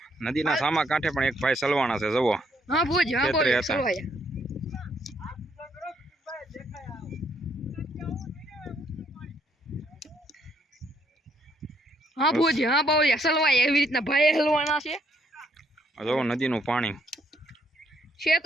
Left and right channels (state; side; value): normal; both; correlation 0.71